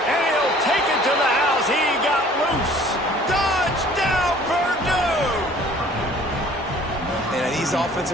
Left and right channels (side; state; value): both; normal; correlation 0.52